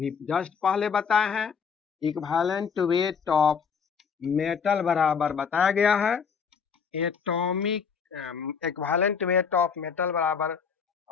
जस्ट पहले बताए हैं, इक्विवेलेंट वेट ऑफ मेटल बराबर बताया गया है atomic equivalent weight of metal बराबर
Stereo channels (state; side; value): quieter; right; 6.3 dB